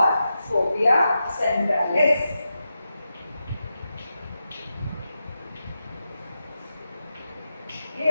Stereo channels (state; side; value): inverted; both; correlation -0.89